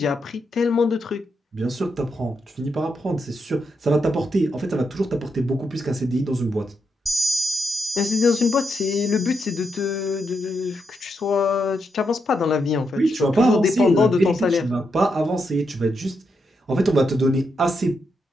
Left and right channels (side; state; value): both; normal; correlation 0.82